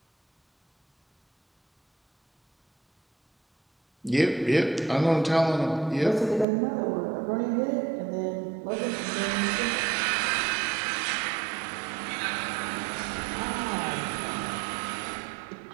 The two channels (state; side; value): drops out; left; at 6.5 s